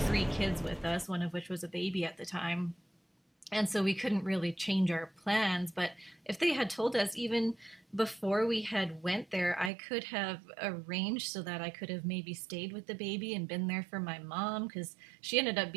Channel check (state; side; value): drops out; left; at 9.7 s